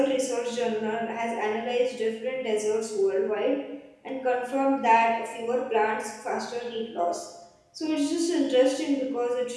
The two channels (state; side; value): identical; both; correlation 1.00